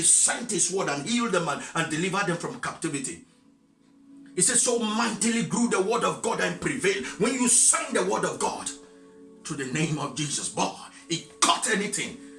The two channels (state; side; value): identical; both; correlation 1.00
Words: sent his word and healed them and delivered them from captivity. It says, so mightily grew the word of God and prevailed. When you sign the word of God to the name of Jesus, boy, he cut anything,